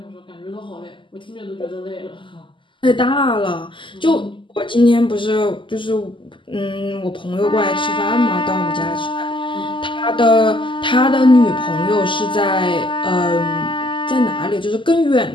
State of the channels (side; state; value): right; late; 0.24 ms